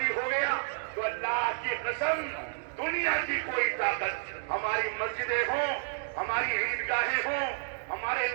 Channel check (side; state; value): left; silent; digital silence